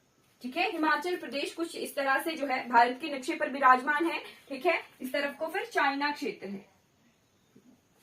ठीक है। हिमाचल प्रदेश कुछ इस तरह से जो है भारत के नक्शे पर विराजमान है, ठीक है। इस तरफ को फिर चाइना क्षेत्र है,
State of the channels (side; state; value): both; identical; correlation 1.00